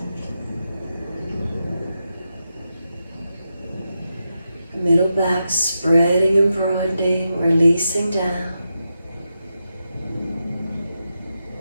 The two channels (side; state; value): both; inverted; correlation -0.88